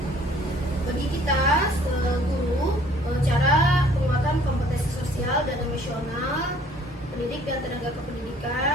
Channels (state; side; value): normal; both; correlation 0.56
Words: Bagi kita guru, cara penguatan kompetensi sosial dan emosional pendidik dan tenaga